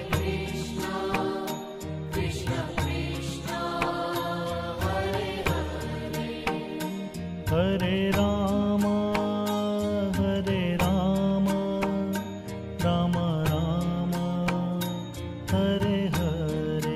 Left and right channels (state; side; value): identical; both; correlation 1.00